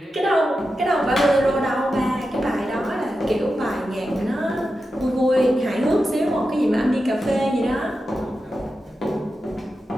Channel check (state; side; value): normal; both; correlation 0.90